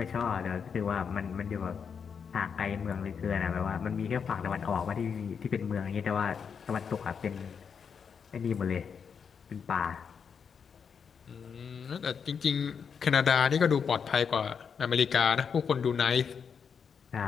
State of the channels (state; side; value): quieter; right; 6.6 dB